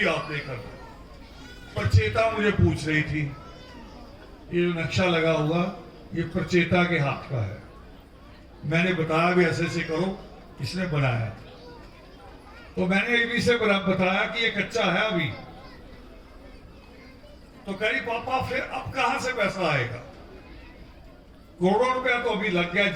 आपने करना। प्रचेता मुझे पूछ रही थी, ये जो नक्शा लगा हुआ ये प्रचेता के हाथ का है। मैंने बताया भी ऐसे करो, इसने बनाया। तो मैंने एबी से बताया कि ये कच्चा है अभी। तो कही पापा फिर अब कहां से पैसा आएगा? करोड़ों रुपया तो अभी लग गया,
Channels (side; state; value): both; identical; correlation 1.00